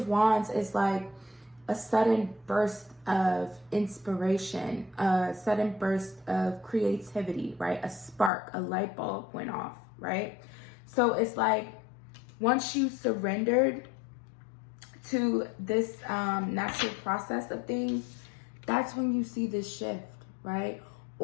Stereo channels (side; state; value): right; drops out; at 8.3 s